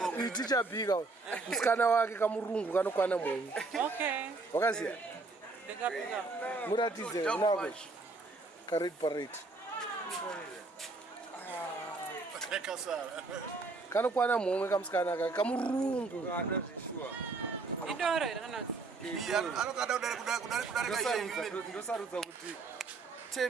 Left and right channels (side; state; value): left; quieter; 3.7 dB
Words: iticha bika. Msikana wake kamurungu kanokwana Mungu. Okay. Wakaziya? Muratize nako. Karet parade. Kanokwana Mungu kamsikana kake kamurungu. Idoro iranazi. Ndosarudza kuti